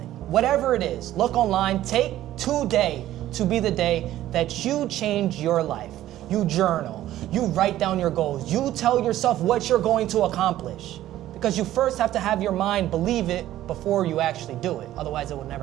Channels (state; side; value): quieter; left; 13.7 dB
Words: Whatever it is, look online, take today to be the day that you change your life. You journal, you write down your goals, you tell yourself what you're going to accomplish. Because you first have to have your mind believe it before you actually do it. Otherwise, it will